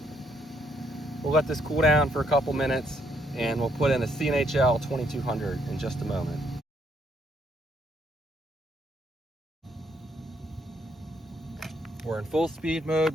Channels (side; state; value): both; normal; correlation 0.72